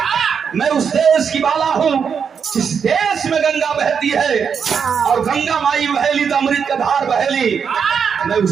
मैं उस देश की बाला हूँ जिस देश में गंगा बहती है और गंगा माई बहेली तो अमृत का धार बहेली, मैं उस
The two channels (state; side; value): quieter; left; 6.7 dB